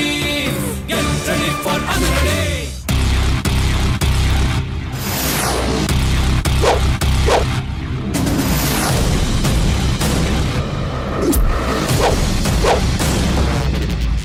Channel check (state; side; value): identical; both; correlation 1.00